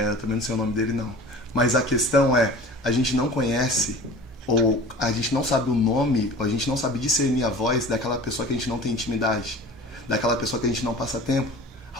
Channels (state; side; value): normal; both; correlation 0.41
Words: também não sei o nome dele, não. Mas a questão é, a gente não conhece, ou a gente não sabe o nome, ou a gente não sabe discernir a voz daquela pessoa que a gente não tem intimidade, daquela pessoa que a gente não passa tempo.